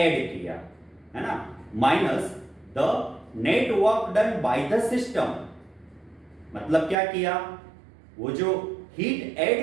किया, है ना, minus the net work done by the system. मतलब क्या किया, वो जो हीट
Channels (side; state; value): left; drops out; at 7.0 s